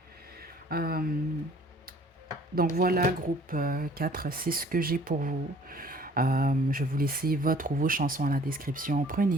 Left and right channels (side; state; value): both; normal; correlation 0.53